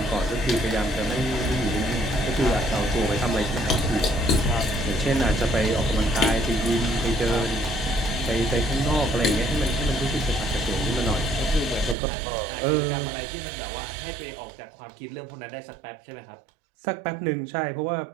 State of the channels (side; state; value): left; drops out; at 12.0 s